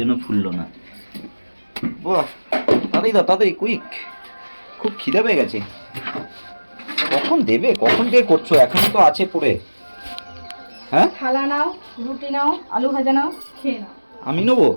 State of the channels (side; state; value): both; inverted; correlation -1.00